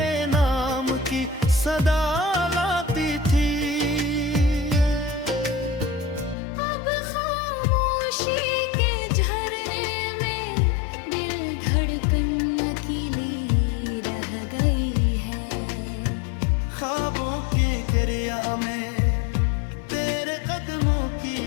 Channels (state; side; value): drops out; right; at 6.4 s